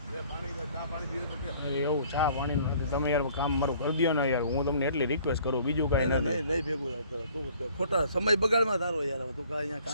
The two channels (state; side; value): inverted; both; correlation -0.56